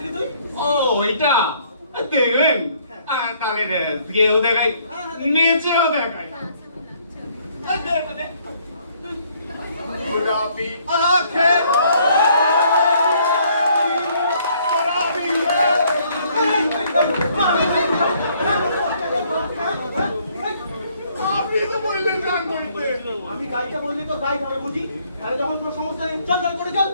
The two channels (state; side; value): inverted; both; correlation -0.65